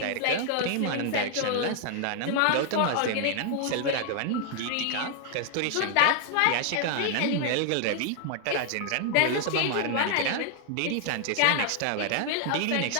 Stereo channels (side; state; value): both; different; correlation 0.00